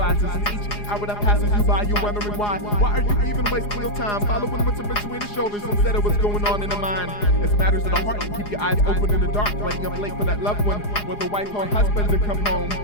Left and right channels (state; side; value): late; right; 4.9 ms